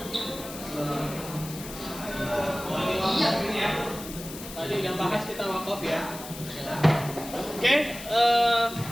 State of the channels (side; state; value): left; noise; hiss, 12 dB below the sound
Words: Ini ya. Tadi udah bahas kita wakaf ya. Oke,